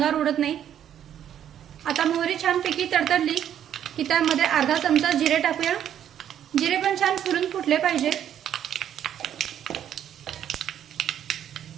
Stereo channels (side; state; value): left; quieter; 10.1 dB